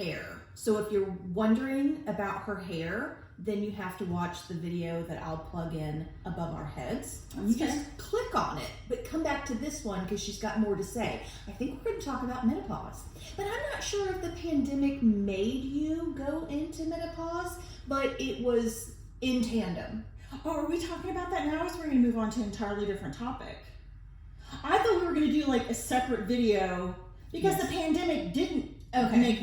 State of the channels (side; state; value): both; identical; correlation 1.00